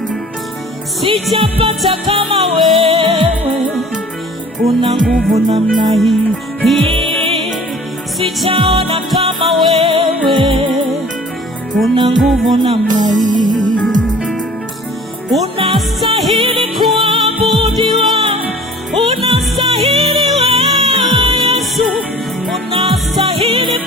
sijapata kama wewe una nguvu namna hii, sijaona kama wewe una nguvu namna hii. Unastahili kuabudiwa, unastahili wewe Yesu, unastahili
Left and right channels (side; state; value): both; normal; correlation 0.47